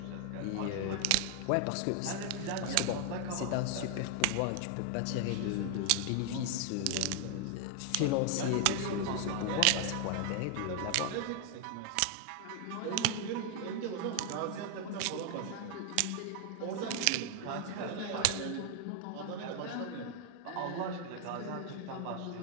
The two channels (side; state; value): both; different; correlation 0.00